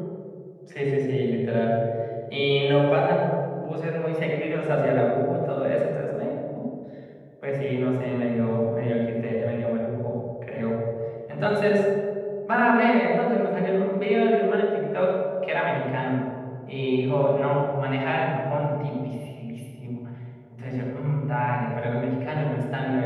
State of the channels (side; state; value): both; identical; correlation 1.00